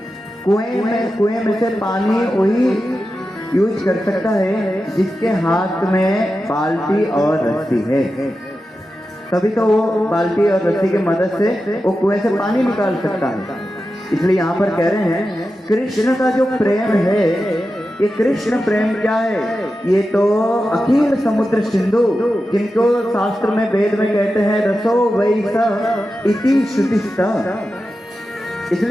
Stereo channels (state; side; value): normal; both; correlation 0.91